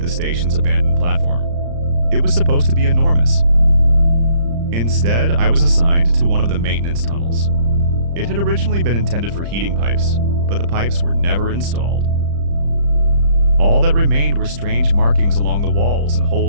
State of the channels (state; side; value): late; left; 35 ms